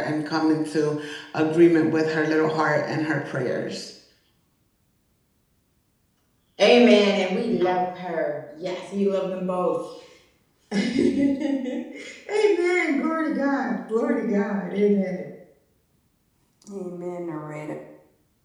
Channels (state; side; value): identical; both; correlation 1.00